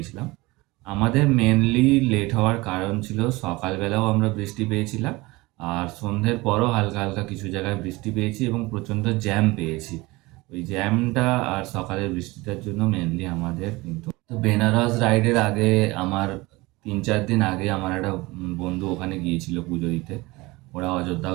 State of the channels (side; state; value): left; quieter; 22.1 dB